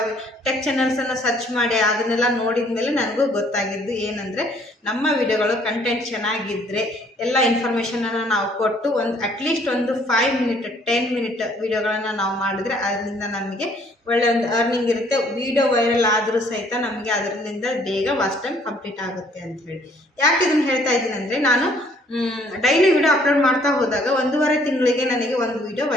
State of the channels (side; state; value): both; normal; correlation 0.61